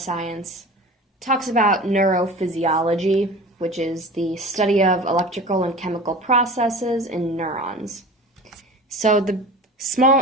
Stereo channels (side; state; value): both; normal; correlation 0.37